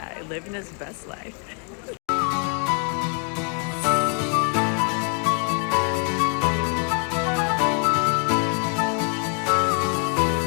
living his best life.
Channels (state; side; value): quieter; right; 39.5 dB